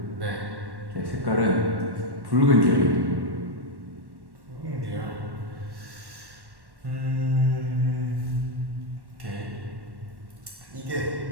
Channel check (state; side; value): late; left; 1.1 ms